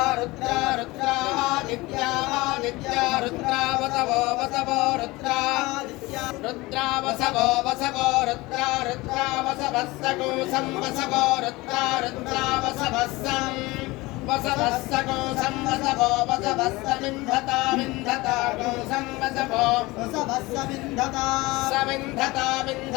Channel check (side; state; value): right; quieter; 21.6 dB